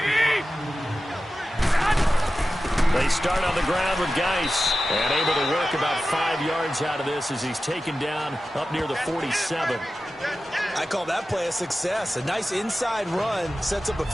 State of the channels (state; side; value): normal; both; correlation 0.94